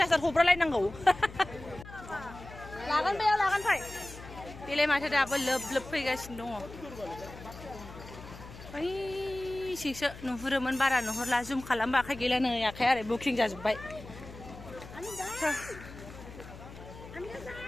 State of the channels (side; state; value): left; noise; hum, 15 dB below the sound